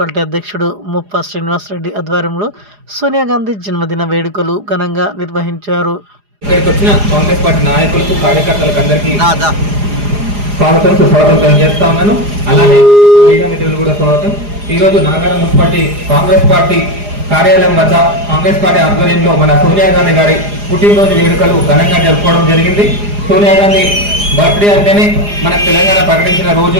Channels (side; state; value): left; late; 4.9 ms